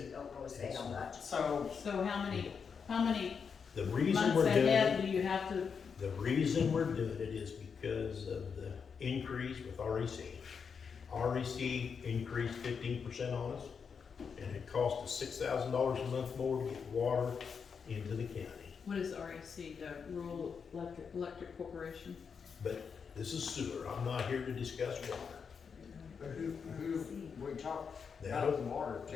So, So how many The reason months we're doing ahead it, do you have to, the reason we're doing it is because of the increase with REC. REC increased 15% on us, and it cost us $6,000 a month more to get water into the county. what is REC, the Rural Electric Corporation? But this is sewer, I'm not here to discuss water. who, we talked That'll, about the water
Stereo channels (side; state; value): right; quieter; 6.2 dB